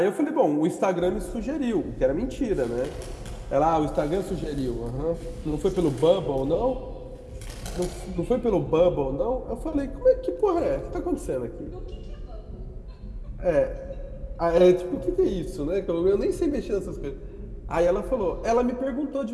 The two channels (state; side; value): identical; both; correlation 1.00